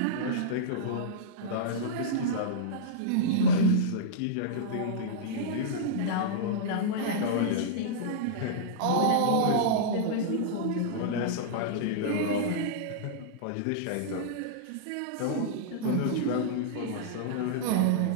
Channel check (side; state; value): both; different; correlation -0.02